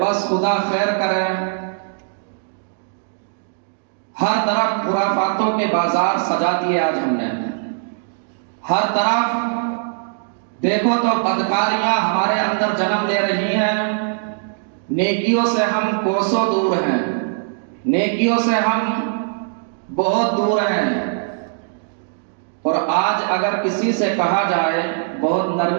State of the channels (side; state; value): left; silent; digital silence